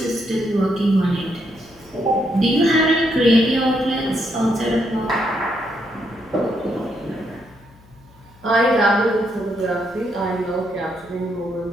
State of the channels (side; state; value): left; noise; hum, 26 dB below the sound